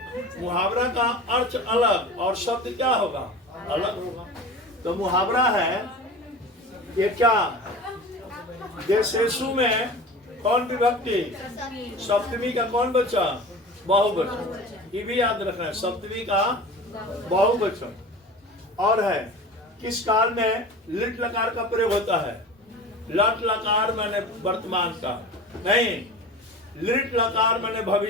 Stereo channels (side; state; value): both; normal; correlation 0.35